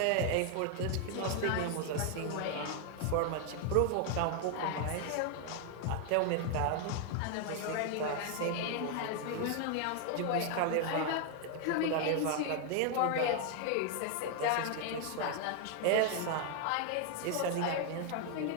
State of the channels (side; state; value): both; different; correlation 0.00